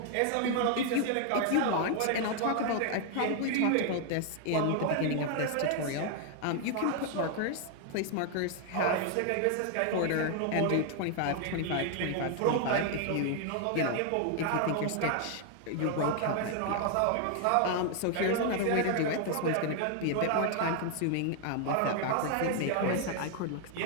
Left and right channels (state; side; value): different; both; correlation 0.00